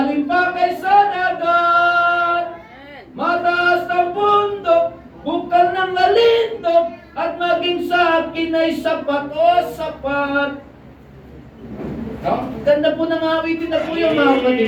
pa kaysa dagat, mataas ang bundok, bukal ng lalindog, at maging sa akin ay sapat o sapat. Ganda po ng awitin na po yung mga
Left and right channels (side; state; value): both; identical; correlation 1.00